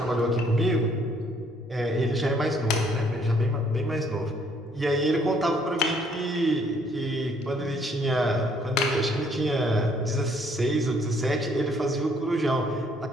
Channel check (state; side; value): normal; both; correlation 0.65